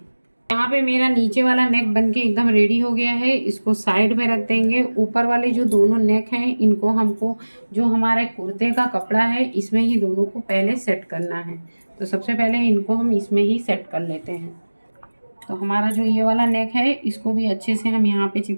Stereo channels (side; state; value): both; inverted; correlation -1.00